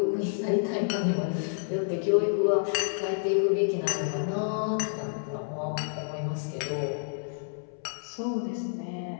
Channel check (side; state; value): right; silent; 58 dB below the other